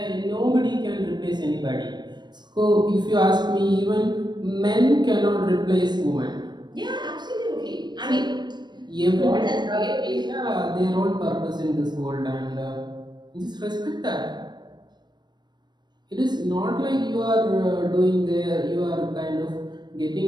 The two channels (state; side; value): late; left; 0.21 ms